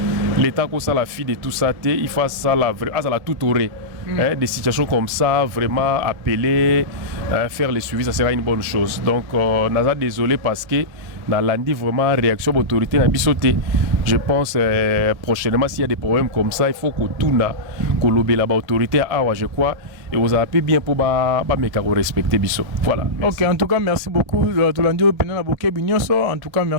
l'État comme ça la fille de tout ça, il faut ça la tout aurait. Des situations comme ça, vraiment appeler, faire les suivis, ça sera une bonne chose. Donc, on a désolé parce que dans l'andi vraiment réaction de l'autorité n'a sauté. Je pense prochainement s'il y a des problèmes comme ça, il faut que tout n'a que l'autorité je crois et vous avez bien pour respecter biso. Voilà. Ok, en tout cas merci beaucoup. En tout cas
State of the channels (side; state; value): left; late; 1.8 ms